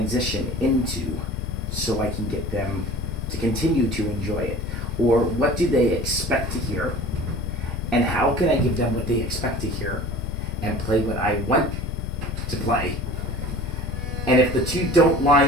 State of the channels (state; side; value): normal; both; correlation 0.41